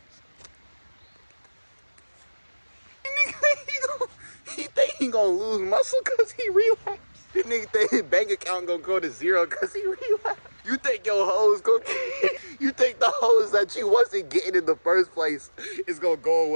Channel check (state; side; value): inverted; both; correlation -1.00